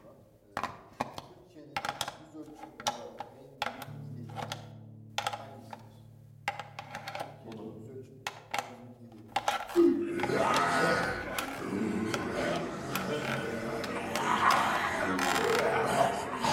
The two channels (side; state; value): both; identical; correlation 1.00